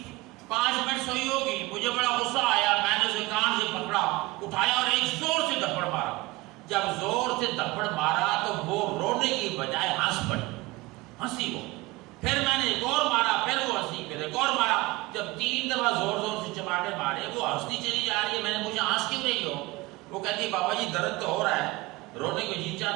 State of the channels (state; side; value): quieter; left; 21.2 dB